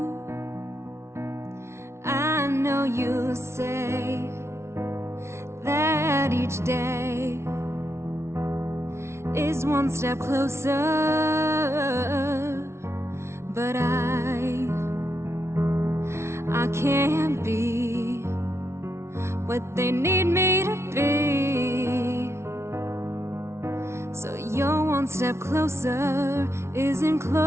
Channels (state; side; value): late; left; 0.13 ms